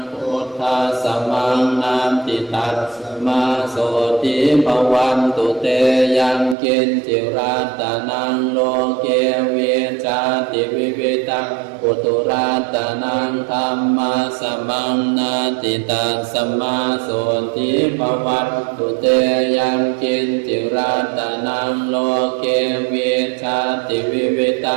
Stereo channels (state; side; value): drops out; left; at 6.6 s